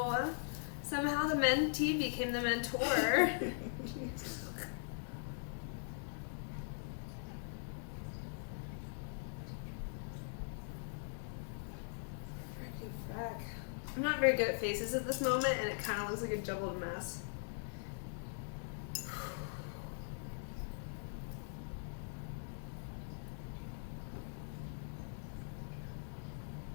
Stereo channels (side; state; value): right; silent; digital silence